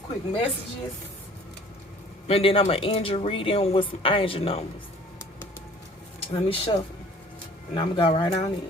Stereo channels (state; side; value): normal; both; correlation 0.51